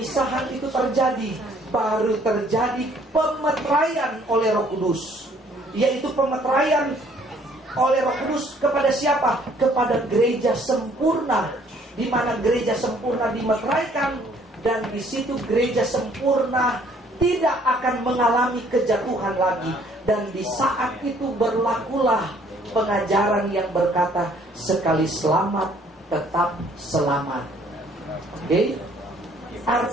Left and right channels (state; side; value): normal; both; correlation 0.61